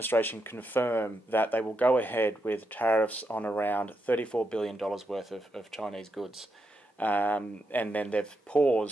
confirm that they will go ahead with tariffs on around $34 billion worth of Chinese goods. And then they've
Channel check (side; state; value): both; normal; correlation 0.83